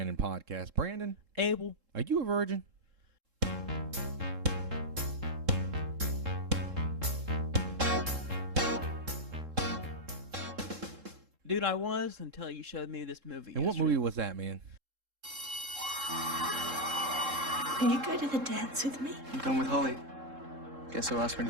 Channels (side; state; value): left; late; 3.7 ms